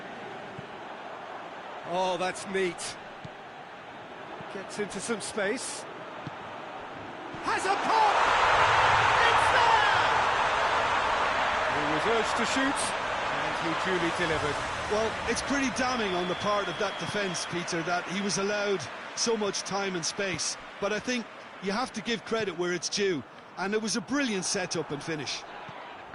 Oh, that's neat. Gets into some space. Has a pop! It's there! He was urged to shoot, and he duly delivered. Well, it's pretty damning on the part of that defence, Peter, that he was allowed so much time and space. But I think you have to give credit where it's due, and it was a brilliant set-up and finish.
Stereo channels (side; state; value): both; identical; correlation 1.00